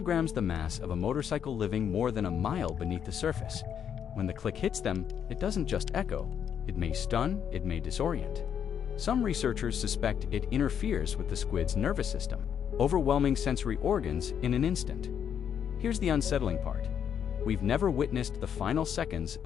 the mass of a motorcycle living more than a mile beneath the surface. When the click hits them, it doesn't just echo. It may stun, it may disorient. Some researchers suspect it interferes with the squid's nervous system, overwhelming sensory organs in an instant. Here's the unsettling part. We've never witnessed the final seconds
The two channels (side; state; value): right; quieter; 8.4 dB